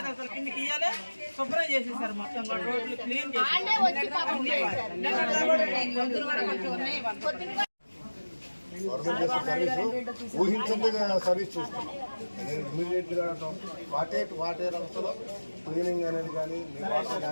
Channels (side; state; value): both; inverted; correlation -1.00